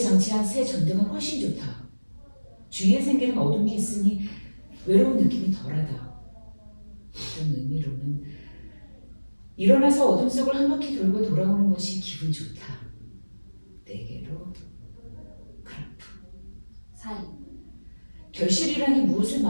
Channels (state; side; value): inverted; both; correlation -1.00